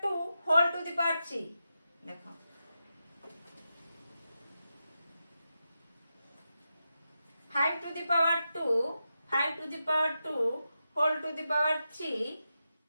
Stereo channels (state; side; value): inverted; both; correlation -0.89